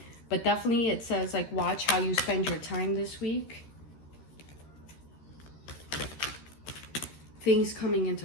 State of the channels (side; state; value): right; late; 13 ms